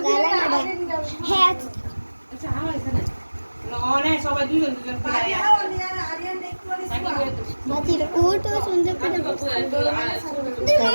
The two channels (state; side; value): inverted; both; correlation -1.00